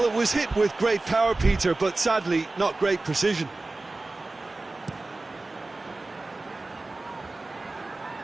it was hit with great power, Peter, but sadly not great precision.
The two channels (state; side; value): quieter; left; 3.2 dB